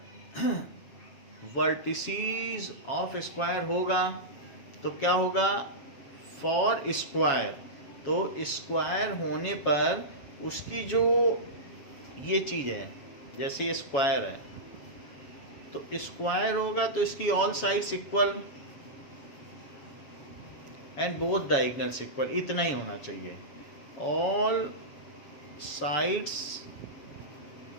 वर्टिसेस ऑफ स्क्वायर होगा तो क्या होगा फॉर स्क्वायर, तो स्क्वायर होने पर उसकी जो ये चीज़ है, जैसे ये स्क्वायर है तो स्क्वायर होगा तो इसकी all sides equal and both diagonals equal, इतना ही होना चाहिए। All sides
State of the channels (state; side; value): late; right; 7.3 ms